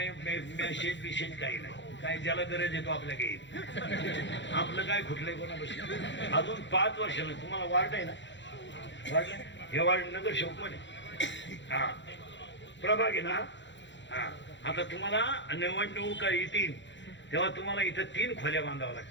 मेसेज काही नाही. काय ज्याला गरज येतो आपल्या काही. आपलं काय खुटलंय कोणापाशी? अजून 5 वर्षानं तुम्हाला वार्ड आहे ना, वार्ड हे वार्ड नगर शोकमन आहे. हा प्रभाग आहे ना. हा आता तुम्हाला निवडणुका येतील तेव्हा तुम्हाला इथं 3 खोल्या बांधाव्या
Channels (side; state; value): right; late; 0.53 ms